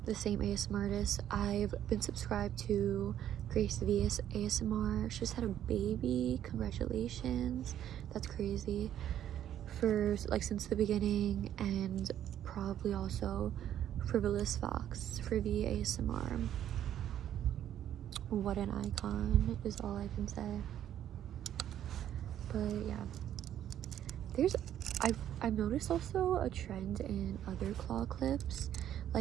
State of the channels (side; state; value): left; quieter; 10.9 dB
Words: the same ASMR artist. I've been subscribed to Grace VS ASMR. She just had a baby. Congratulations. That's crazy. For like since the beginning, and probably also Frivolous Fox for the ASMR. What an icon is all I can say. But yeah, I've noticed also a trend in other claw clips,